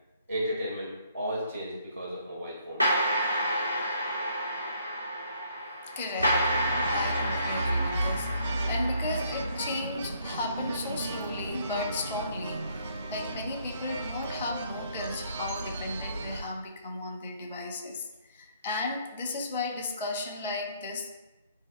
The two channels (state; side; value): inverted; both; correlation -0.66